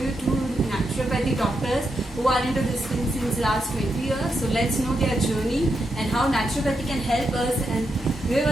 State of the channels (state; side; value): normal; both; correlation 0.84